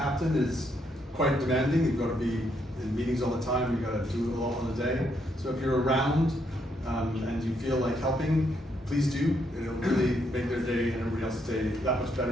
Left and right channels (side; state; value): both; normal; correlation 0.75